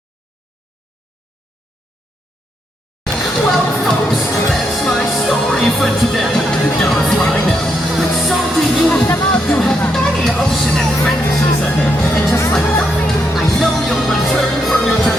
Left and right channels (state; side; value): normal; both; correlation 0.79